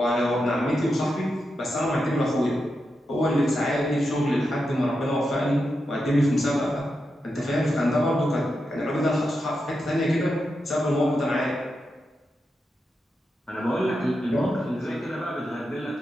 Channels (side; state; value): both; normal; correlation 0.87